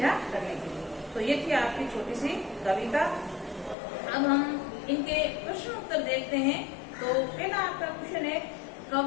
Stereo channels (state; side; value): drops out; right; at 3.8 s